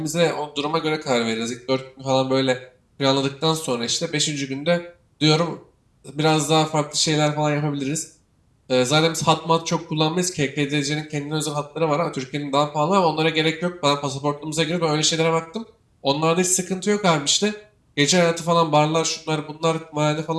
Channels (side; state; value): both; identical; correlation 1.00